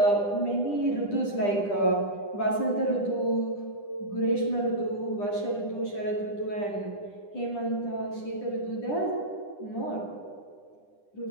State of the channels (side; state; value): right; late; 9.9 ms